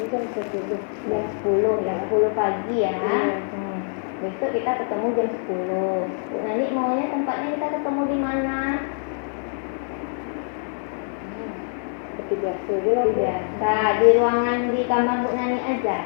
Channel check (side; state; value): right; silent; 58 dB below the other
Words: kan 10. Jam 10, ya 10 pagi ya. Iya. Besok kita ketemu jam 10. Bu Nani maunya tempatnya kita ketemu di mana? Seperti biasa aja lah. Bu. Biasa, di ruangan di kamar Bu Nani aja.